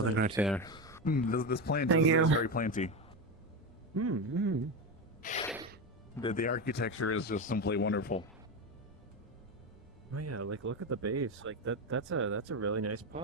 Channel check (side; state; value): both; normal; correlation 0.16